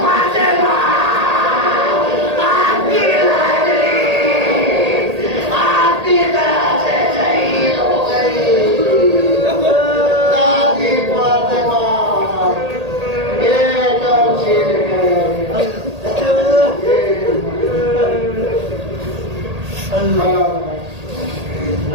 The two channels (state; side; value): late; left; 1.8 ms